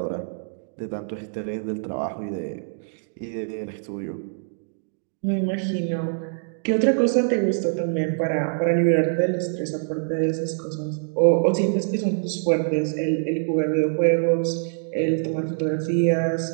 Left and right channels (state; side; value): silent; left; digital silence